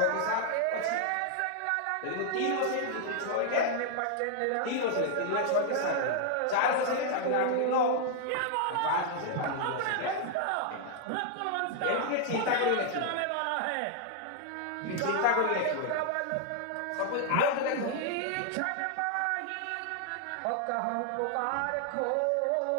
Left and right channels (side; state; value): both; different; correlation 0.00